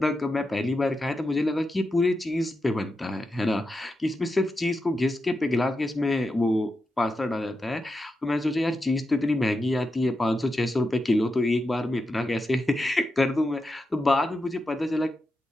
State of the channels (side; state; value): both; normal; correlation 0.88